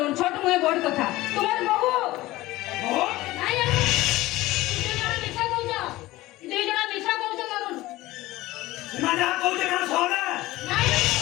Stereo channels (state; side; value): quieter; right; 18.0 dB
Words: ছোট মুয়ে বড় কথা তোমার বহু ও নাই অরুণ তুই জনা মিছা কহুছ তুই জনা মিছা কহুছ অরুণ সীমা যা কইছে কানা সহলে নাই